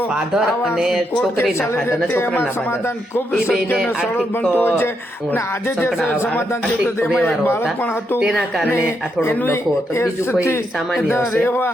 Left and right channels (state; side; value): normal; both; correlation 0.80